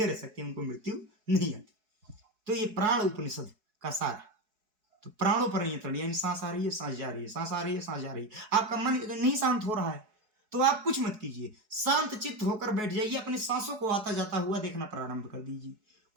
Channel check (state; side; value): late; left; 4.7 ms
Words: रह सकते हैं, उनको मृत्यु नहीं आती। तो ये प्राण उपनिषद का सार है। तो प्राणों पर नियंत्रण, यानी सांस आ रही है, सांस जा रही है, सांस आ रही है, सांस जा रही है। आपका मन नहीं शांत हो रहा है तो आप कुछ मत कीजिए, शांत चित्त होकर बैठ जाइए, अपनी सांसों को आता जाता हुआ देखना प्रारंभ कर दीजिए।